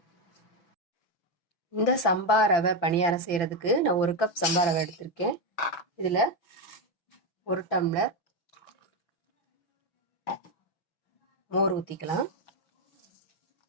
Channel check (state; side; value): late; right; 5.9 ms